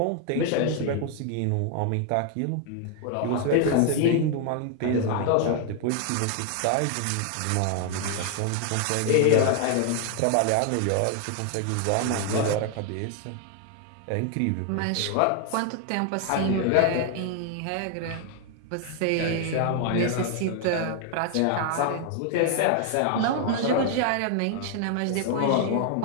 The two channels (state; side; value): different; both; correlation 0.00